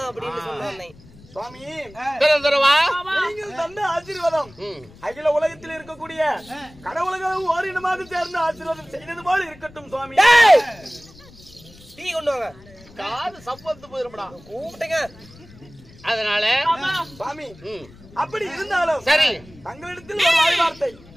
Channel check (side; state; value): left; noise; rumble, 23 dB below the sound